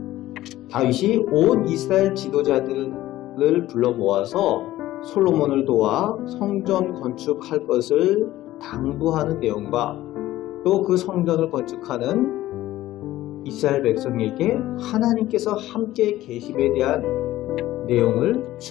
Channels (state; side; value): quieter; right; 15.3 dB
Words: 다윗이 온 이스라엘 지도자들을 불러 모아서 솔로몬을 도와 성전 건축할 것을 당부하는 내용과 또 그 성전을 건축하는 이스라엘 백성에게 하나님께서 함께 계심에 대한 내용을